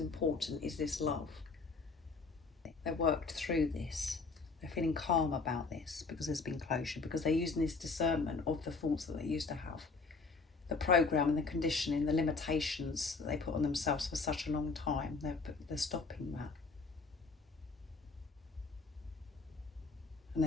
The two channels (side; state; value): right; quieter; 4.3 dB